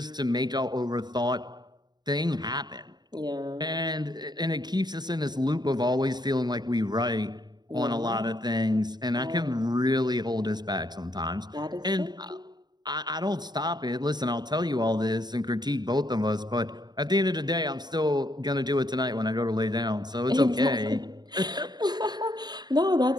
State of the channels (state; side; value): late; left; 0.20 ms